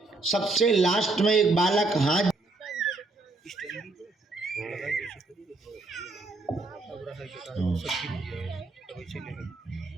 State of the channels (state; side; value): quieter; left; 3.2 dB